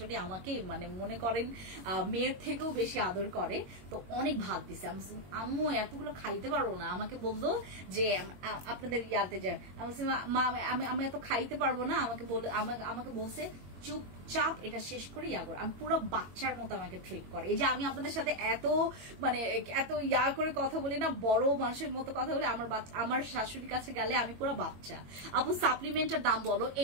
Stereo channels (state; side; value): late; left; 22 ms